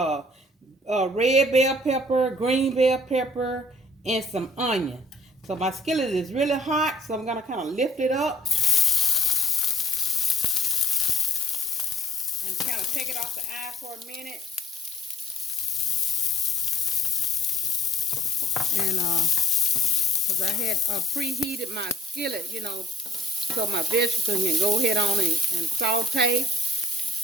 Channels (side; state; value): both; normal; correlation 0.61